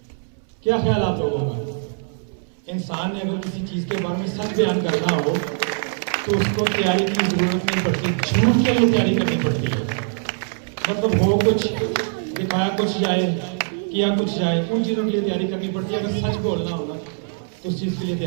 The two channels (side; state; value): left; silent; 64 dB below the other